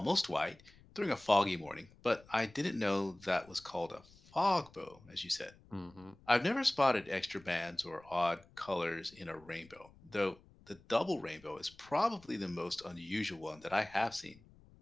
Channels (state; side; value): noise; left; rumble, 25 dB below the sound